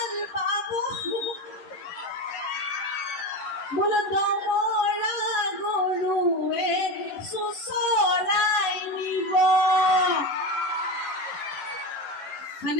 পাব বোলো দমৰা গৰুৱে চুচৰাই নিব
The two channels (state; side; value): late; right; 11 ms